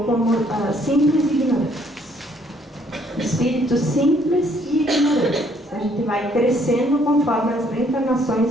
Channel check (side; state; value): both; normal; correlation 0.65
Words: como simples e ignorantes. Espíritos simples e ignorantes. A gente vai crescendo conforme as